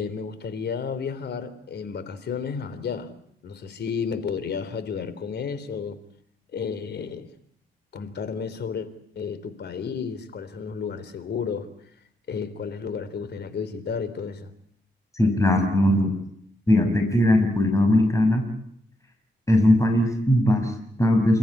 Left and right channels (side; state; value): both; normal; correlation 0.78